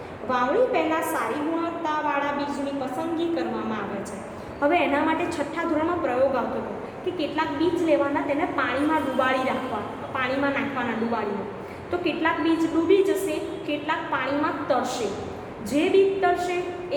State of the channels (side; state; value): both; identical; correlation 1.00